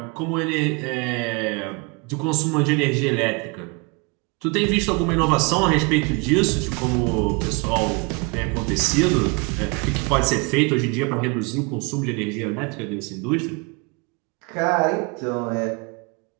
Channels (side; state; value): left; quieter; 30.7 dB